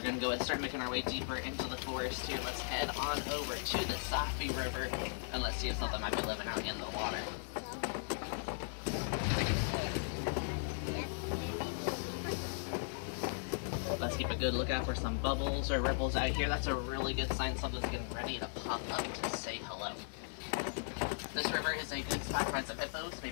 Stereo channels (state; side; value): silent; right; 53 dB below the other